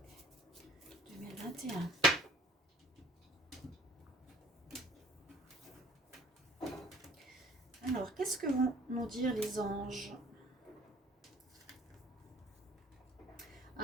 2021. Alors, qu'est-ce que vont nous dire les anges?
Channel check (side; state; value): both; normal; correlation 0.55